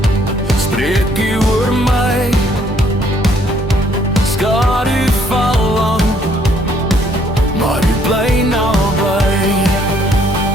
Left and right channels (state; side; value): normal; both; correlation 0.65